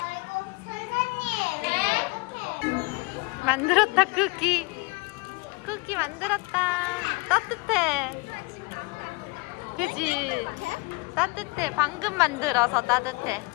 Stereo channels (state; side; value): quieter; right; 26.8 dB